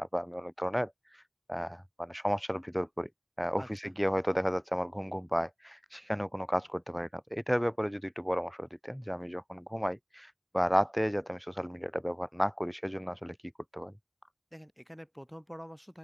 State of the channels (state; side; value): identical; both; correlation 1.00